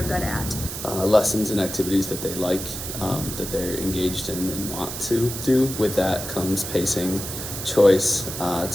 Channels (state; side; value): noise; right; hiss, 7 dB below the sound